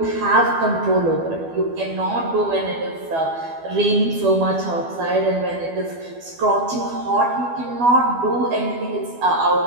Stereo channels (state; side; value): late; left; 12 ms